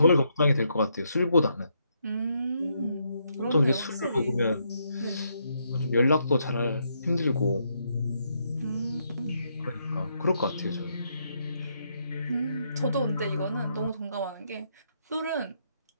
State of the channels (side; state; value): both; inverted; correlation -0.77